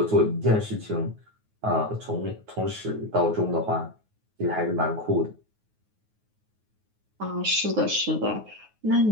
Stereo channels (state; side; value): late; left; 9.4 ms